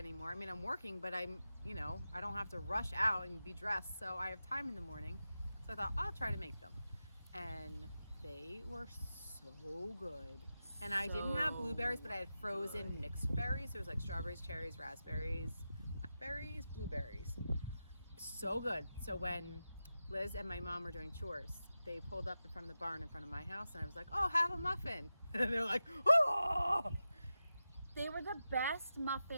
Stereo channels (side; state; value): both; inverted; correlation -0.91